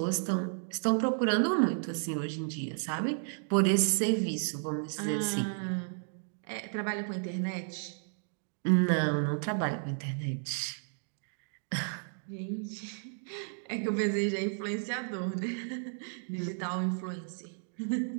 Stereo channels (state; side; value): silent; left; digital silence